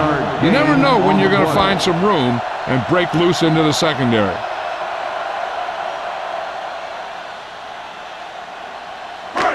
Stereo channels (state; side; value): identical; both; correlation 1.00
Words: You never know when you're going to find some room and break loose into the secondary.